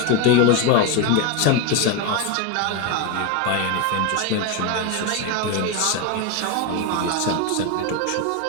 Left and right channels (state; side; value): different; both; correlation 0.02